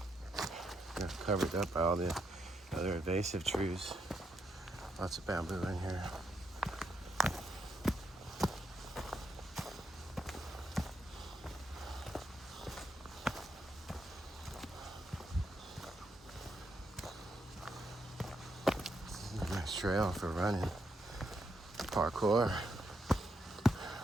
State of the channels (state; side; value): normal; both; correlation 0.79